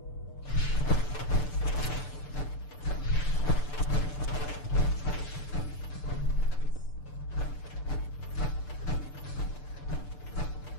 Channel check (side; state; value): right; late; 6.8 ms